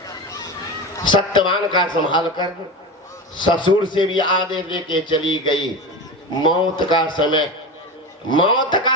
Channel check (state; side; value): normal; both; correlation 0.25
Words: सत्यवान का संभाल कर। ससुर से भी आदेश लेके चली गई। मौत का